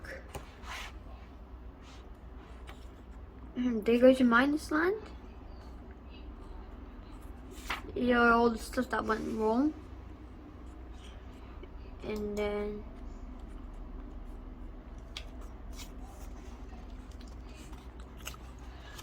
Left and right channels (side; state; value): both; identical; correlation 1.00